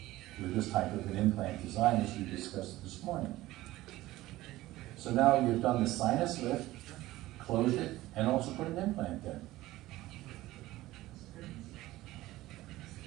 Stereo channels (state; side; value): quieter; left; 16.9 dB